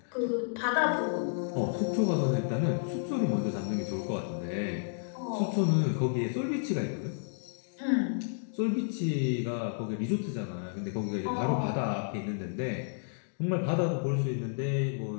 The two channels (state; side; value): silent; right; digital silence